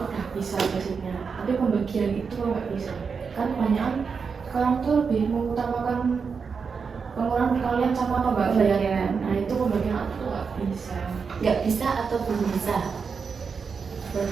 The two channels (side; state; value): left; quieter; 5.6 dB